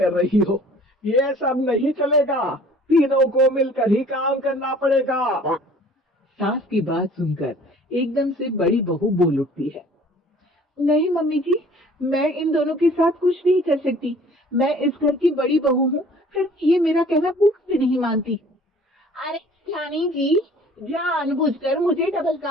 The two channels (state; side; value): normal; both; correlation 0.51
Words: रही हो। ये सब नहीं चलेगा, तीनों को मिलकर ही काम करना पड़ेगा। सास की बात सुनकर एकदम से बड़ी बहू बोल उठती है। नहीं मम्मी जी, मैं इन दोनों के साथ कुछ नहीं कर सकती। मैं इस घर की बड़ी बहू हूँ, फिर ये मेरा कहना भी नहीं मानती। अरे रानी जी, जानबूझकर मुझे डबल